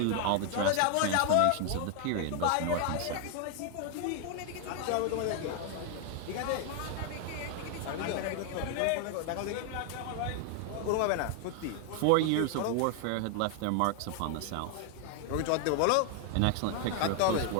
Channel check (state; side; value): different; both; correlation 0.00